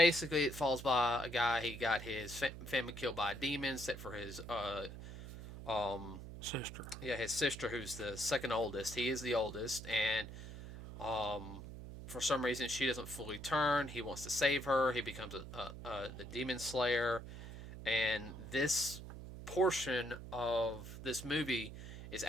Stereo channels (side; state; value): right; noise; hum, 11 dB below the sound